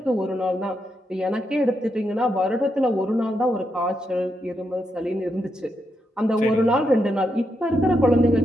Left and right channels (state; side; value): normal; both; correlation 0.82